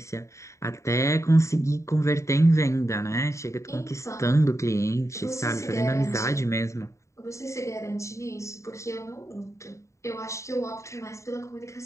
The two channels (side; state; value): right; late; 0.14 ms